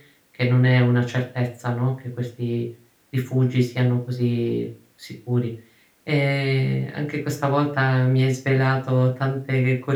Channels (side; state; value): both; identical; correlation 1.00